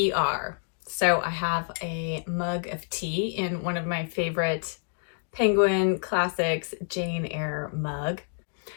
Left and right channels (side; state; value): right; silent; 58 dB below the other